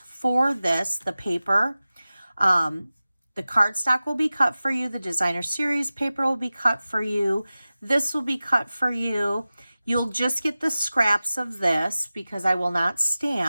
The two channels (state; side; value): inverted; both; correlation -0.96